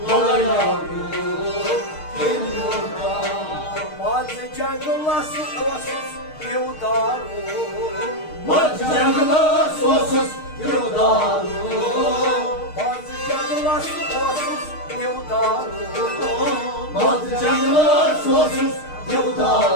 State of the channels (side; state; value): right; late; 6.5 ms